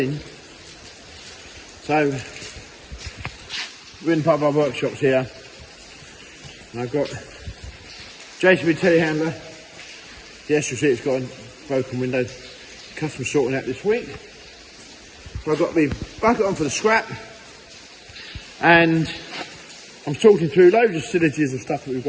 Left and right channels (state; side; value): identical; both; correlation 1.00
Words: So we're in part of our workshops here, and I've got JCB telehandler. Yes, you'll see it's got a broken window. Customer sorting out this week. So I've got the bucket on for the scrap, and I'm sorting through loads of facilities of stuff that we've